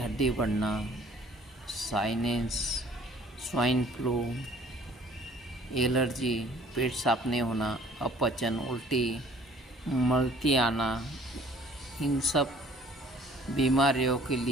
बढ़ना, साइनस, स्वाइन फ्लू, एलर्जी, पेट साफ नहीं होना, अपचन, उल्टी, मलती आना, इन सब बीमारियों के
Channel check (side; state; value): both; normal; correlation 0.55